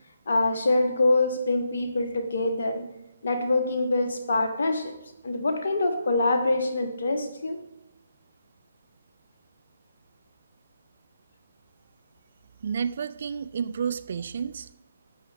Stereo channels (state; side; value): inverted; both; correlation -0.83